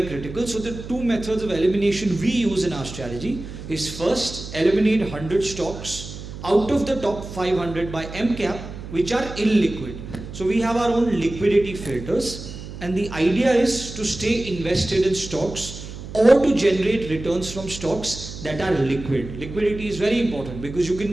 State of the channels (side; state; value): right; noise; hum, 11 dB below the sound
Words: critical. So the two methods of elimination we use in our strategy is first, eliminate 100 stocks out of the top 500 by MCAP, which are illiquid. So we have our own liquidity filters, and the idea is to stay invested in stocks or to generate returns from stocks that are liquid. Liquidity is very important because you